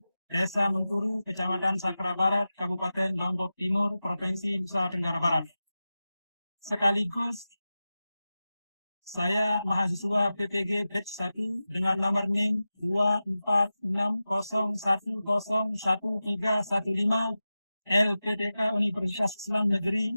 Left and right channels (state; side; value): inverted; both; correlation -0.94